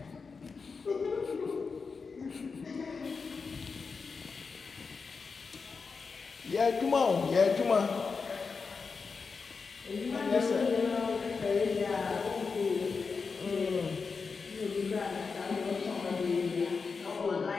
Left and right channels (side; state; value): right; quieter; 4.9 dB